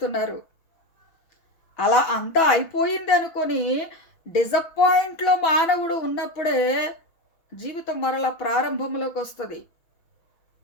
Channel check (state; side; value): late; right; 6.1 ms